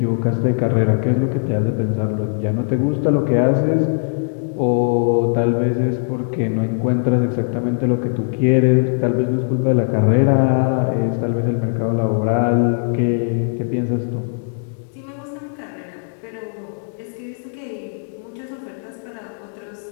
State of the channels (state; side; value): silent; right; digital silence